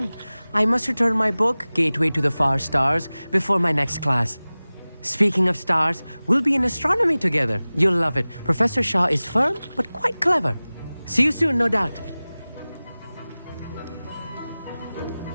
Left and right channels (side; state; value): both; inverted; correlation -0.98